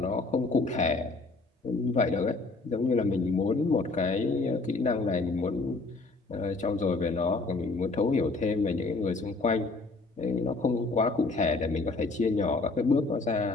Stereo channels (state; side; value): quieter; right; 3.6 dB